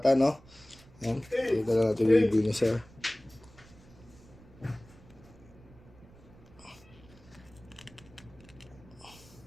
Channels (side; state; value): right; noise; rumble, 23 dB below the sound